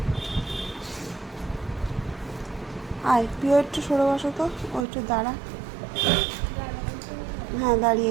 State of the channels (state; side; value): drops out; left; at 4.9 s